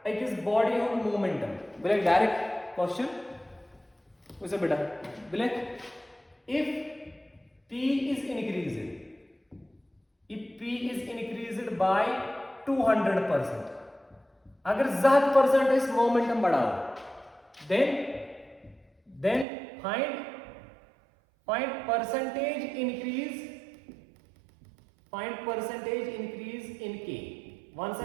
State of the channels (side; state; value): left; drops out; at 19.5 s